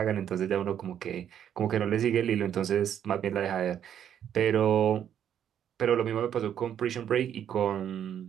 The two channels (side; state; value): left; quieter; 9.5 dB